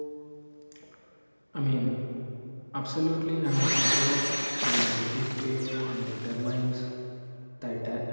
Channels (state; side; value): inverted; both; correlation -1.00